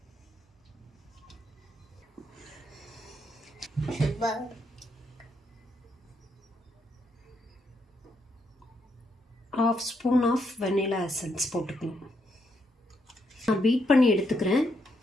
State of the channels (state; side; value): normal; both; correlation 0.77